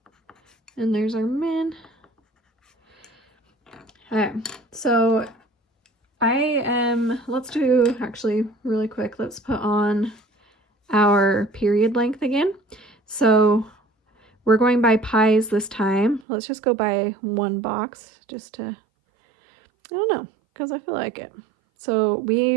and there's our min. Okay, so let's do, actually really quick, let's put on our period length again. So we're going by pies this time. Let's just go by 1 box just to, I don't know, because I feel like it. So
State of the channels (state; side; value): drops out; left; at 16.2 s